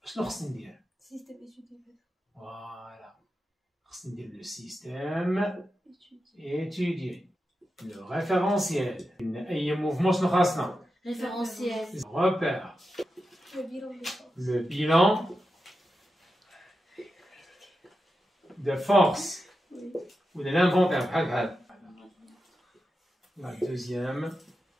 شنو خصني ندير؟ سيستم إيتودي. فوالا خصني ندير لو سيستيم étudié le référentiel. أي موفمون شنو خاصنا؟ référentiel. repère. Le bilan de force ou de l'inventaire. La deuxième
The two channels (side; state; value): both; normal; correlation 0.90